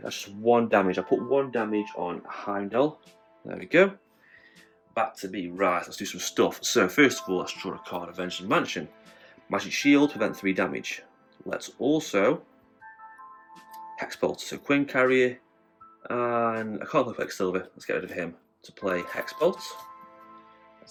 just 1 damage. I put 1 damage on Heimdall. There we go. Back to me. Right, let's do some stuff. So first of all, let's draw a card. Avenging Mansion. Magic Shield, prevent 3 damage. Let's also Hexbolt. So Queen Carrier, and I can't play Quicksilver. Let's get rid of him to play Hexbolt.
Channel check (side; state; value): both; identical; correlation 1.00